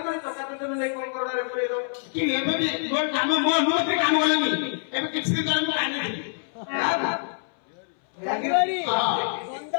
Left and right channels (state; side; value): silent; right; 61 dB below the other